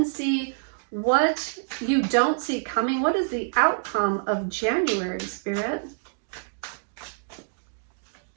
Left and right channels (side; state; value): left; silent; digital silence